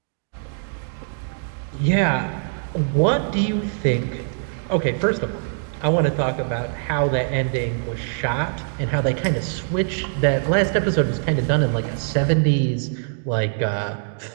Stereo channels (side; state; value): left; silent; digital silence